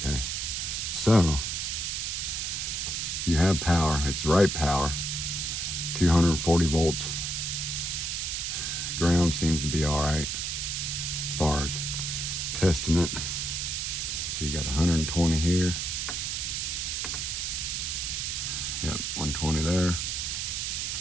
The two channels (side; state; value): right; noise; hiss, 2 dB below the sound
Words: so you have power. It's the right power, 240 volts. Ground seems to be all right as far as testing it. So you got 120 here. Yep, 120 there.